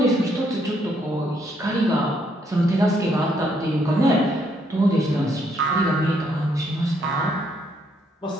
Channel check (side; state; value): both; normal; correlation 0.72